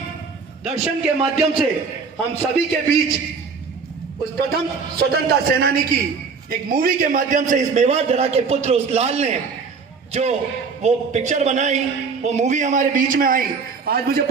दर्शन के माध्यम से हम सभी के बीच उस प्रथम स्वतंत्रता सेनानी की एक मूवी के माध्यम से इस मेवाड़ धरा के पुत्र उस लाल ने जो वो पिक्चर बनाई, वो मूवी हमारे बीच में आई। आज मुझे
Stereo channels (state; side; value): quieter; left; 5.2 dB